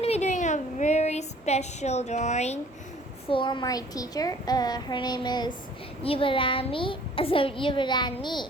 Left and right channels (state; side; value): normal; both; correlation 0.53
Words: to be doing a very special drawing for my teacher. Her name is Yuvarani.